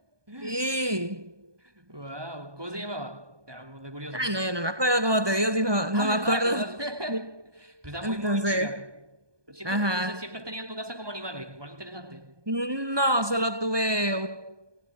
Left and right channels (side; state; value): left; late; 1.2 ms